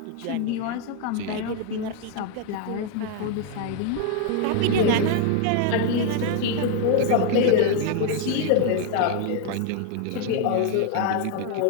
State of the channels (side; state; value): both; different; correlation 0.00